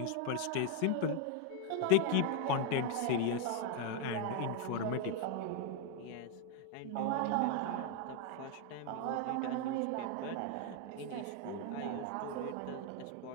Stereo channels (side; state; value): both; different; correlation 0.01